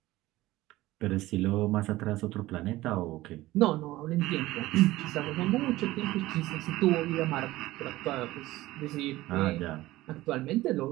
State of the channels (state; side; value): quieter; left; 17.4 dB